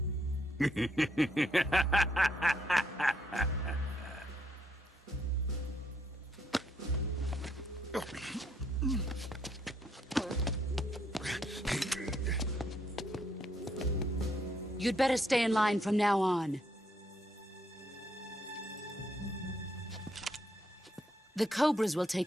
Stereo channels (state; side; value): normal; both; correlation 0.73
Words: You'd better stay in line from now on. The Cobras will take